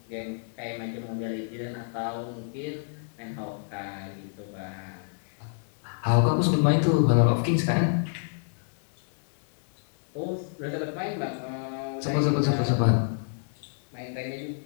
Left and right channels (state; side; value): silent; right; 59 dB below the other